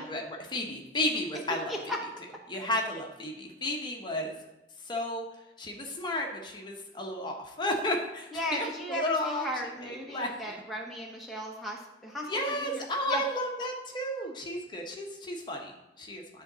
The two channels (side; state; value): both; normal; correlation 0.13